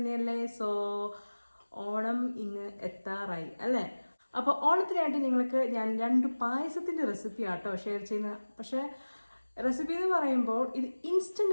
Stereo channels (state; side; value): inverted; both; correlation -1.00